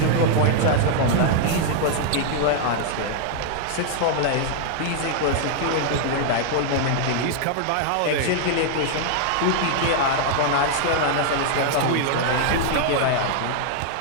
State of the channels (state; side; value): different; both; correlation -0.01